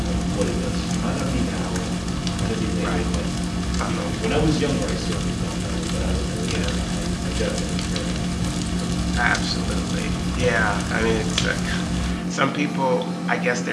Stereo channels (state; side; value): identical; both; correlation 1.00